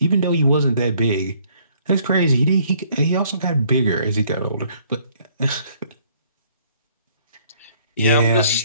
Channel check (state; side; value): inverted; both; correlation -0.62